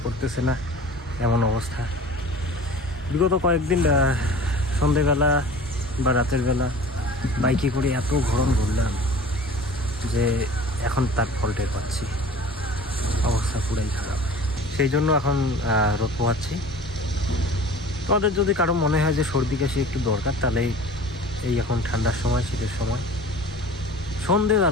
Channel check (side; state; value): both; normal; correlation 0.43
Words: করতেছে না, এমন অবস্থা। বিগত কয়েকদিন সন্ধেবেলা বা রাতের বেলা বাইকে করে এত গরম ঘুরলাম যে এখন তার ফল টের পাচ্ছি, অবস্থা পুরাই খারাপ। সেই জন্য এখন রোদ পোহাচ্ছি। তোমাদের যদি কারো মনে হয় যে সর্দি কাশি একটু দরকার, তাহলে এই এখন ঠান্ডার সময়, শীতের সময়